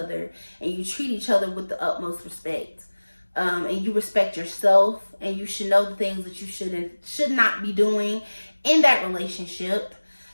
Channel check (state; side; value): inverted; both; correlation -1.00